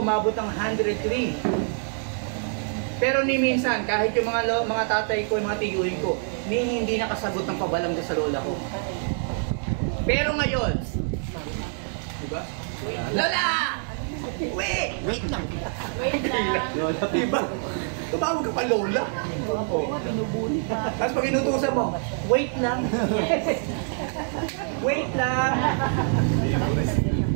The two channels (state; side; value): silent; left; 61 dB below the other